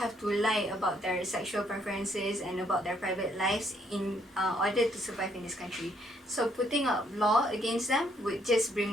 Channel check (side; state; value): both; normal; correlation 0.70